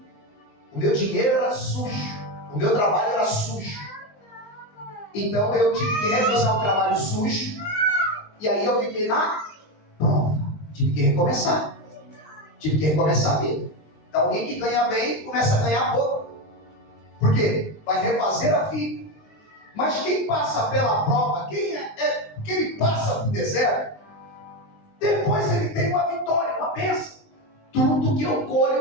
O meu dinheiro era sujo, o meu trabalho era sujo. Então eu tive que recusar o trabalho sujo. E aí eu fiquei na prova. Tive que recomeçar. Tive que recomeçar a vida. Então alguém que ganha bem começa a ganhar pouco. Por quê? Vai refazer a vida. Mas quem passa pela prova, quem passa pelo deserto, depois ele tem uma vitória, uma bênção. Tudo que eu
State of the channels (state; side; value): late; right; 19 ms